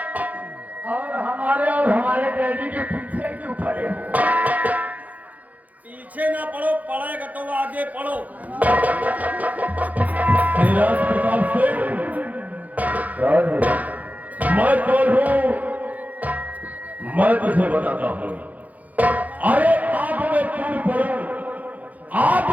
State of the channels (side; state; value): left; late; 0.077 ms